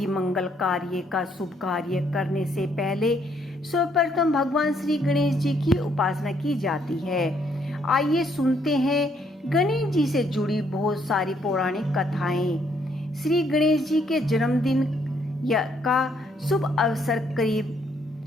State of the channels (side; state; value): both; normal; correlation 0.70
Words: मंगल कार्य का शुभ कार्य करने से पहले सर्वप्रथम भगवान श्री गणेश जी की उपासना की जाती है। आइए सुनते हैं गणेश जी से जुड़ी बहुत सारी पौराणिक कथाएं। श्री गणेश जी के जन्मदिन का शुभ अवसर